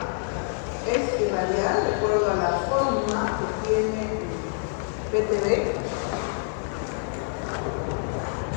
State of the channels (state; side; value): silent; right; 61 dB below the other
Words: Es irradiar de acuerdo a la forma que tiene el PTB,